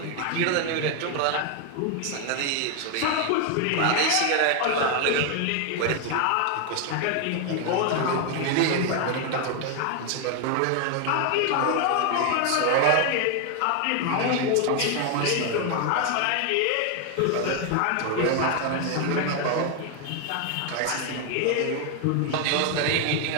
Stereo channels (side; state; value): both; different; correlation 0.01